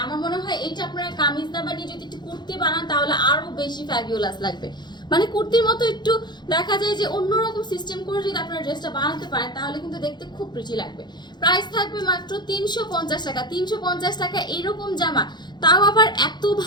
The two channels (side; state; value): right; late; 0.21 ms